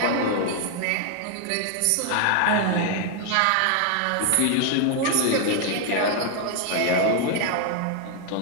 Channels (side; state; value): both; different; correlation 0.00